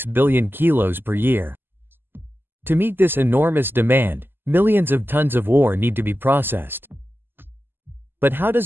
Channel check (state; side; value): late; left; 0.098 ms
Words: billion kilos per year. To meet this enormous demand, millions of tons of ore need to be processed. But how